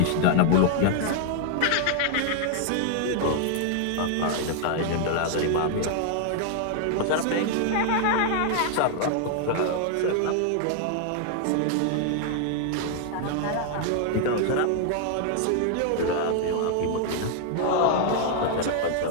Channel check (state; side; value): different; both; correlation 0.00